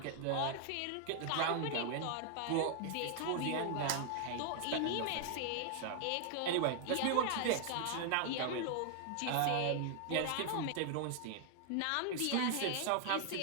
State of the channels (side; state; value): both; different; correlation 0.00